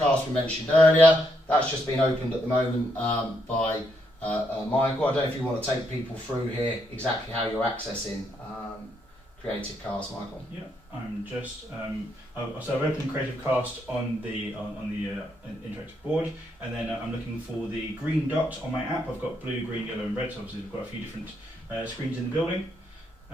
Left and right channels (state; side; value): normal; both; correlation 0.77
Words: we mentioned earlier, that's just been opened at the moment by Michael. I don't know if you want to take people through here exactly how you're accessing Creative Cast, Michael. Yeah, I'm just so I've opened Creative Cast on the interactive board, and then I'm looking for the green dot on my app. I've got blue, green, yellow, and red. So obviously we've got a few different screens in the building,